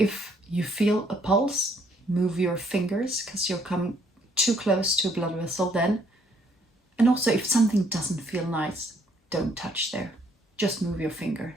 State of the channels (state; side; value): normal; both; correlation 0.67